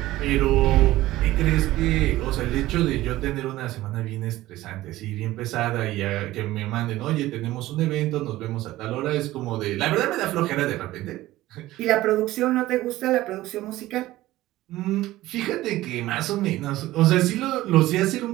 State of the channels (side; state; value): left; quieter; 16.5 dB